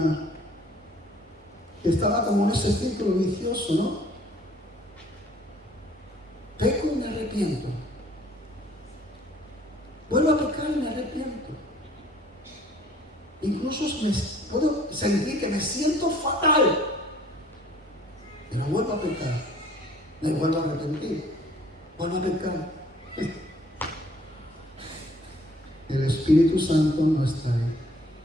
que estaba como en ese círculo vicioso, ¿no? Peco y me arrepiento. Vuelvo a pecar y me arrepiento. Incluso puedo sentir que me siento fatal, pero vuelvo a pecar. Me vuelvo a arrepentir. Vuelvo a pecar. El Espíritu Santo no está ahí.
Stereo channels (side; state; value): both; normal; correlation 0.57